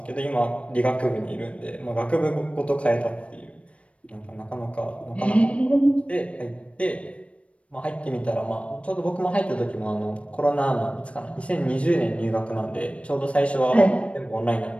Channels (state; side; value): late; right; 0.062 ms